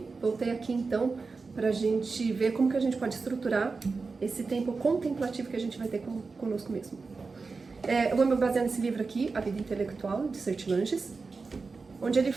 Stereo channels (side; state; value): left; quieter; 4.3 dB